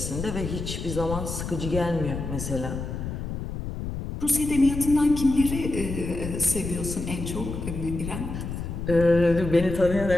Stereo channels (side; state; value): left; noise; rumble, 6 dB below the sound